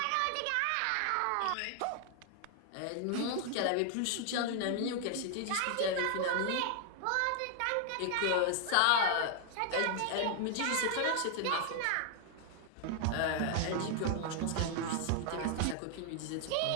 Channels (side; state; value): both; different; correlation 0.00